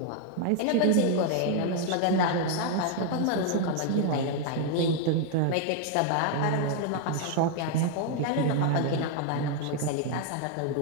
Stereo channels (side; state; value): both; different; correlation 0.00